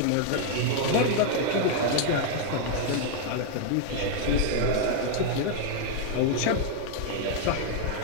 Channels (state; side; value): different; both; correlation 0.00